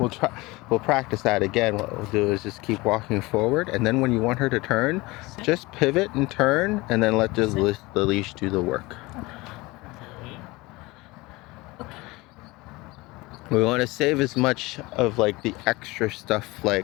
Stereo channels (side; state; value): right; quieter; 22.2 dB